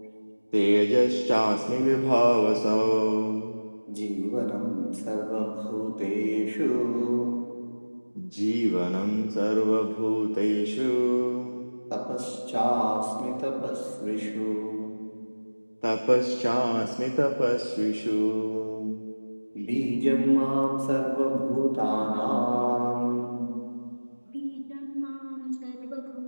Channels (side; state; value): both; inverted; correlation -1.00